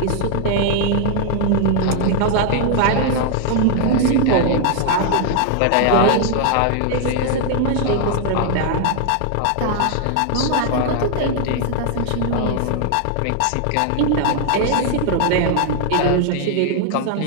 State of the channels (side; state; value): both; different; correlation 0.00